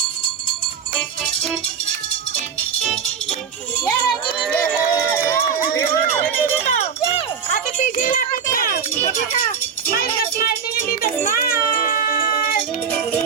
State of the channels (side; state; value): left; quieter; 6.9 dB